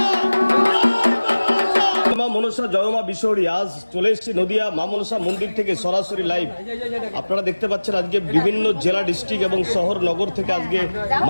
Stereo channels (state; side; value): inverted; both; correlation -1.00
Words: মা মনসা জয় মা বিশ্বহরি। আজ চলে এসেছি নদিয়া মা মনসা মন্দির থেকে সরাসরি লাইভ। আপনারা দেখতে পাচ্ছেন আজকে বিভিন্ন জেলা ডিস্ট্রিক্ট এবং শহর নগর থেকে আজকে